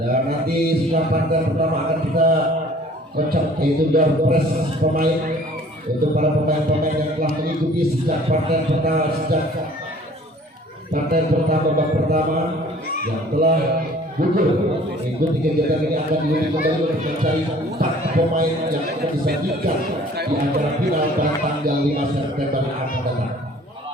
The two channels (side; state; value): both; normal; correlation 0.52